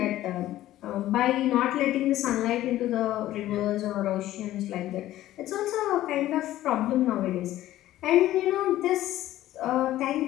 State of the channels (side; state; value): right; quieter; 14.3 dB